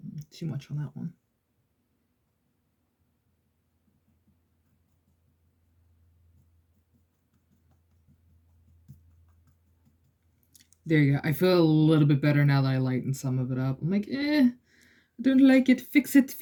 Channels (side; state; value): both; identical; correlation 1.00